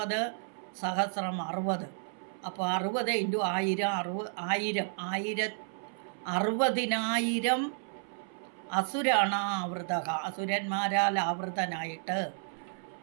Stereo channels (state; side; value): silent; left; 56 dB below the other